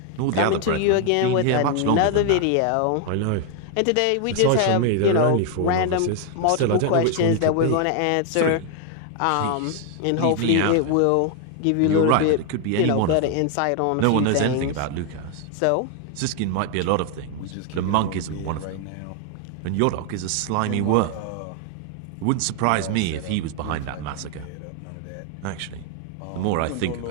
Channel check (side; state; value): both; different; correlation 0.00